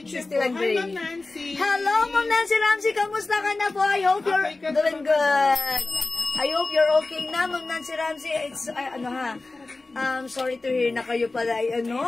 61 gray. Hi, Ma'am Nancy. Hello, Ma'am Nancy Ramsey. Kamusta ka na po? I hope you're doing good. I hope you're okay na, Ma'am Nancy Ramsey. It's, sorry to hear na kayo pala,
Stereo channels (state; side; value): quieter; right; 3.3 dB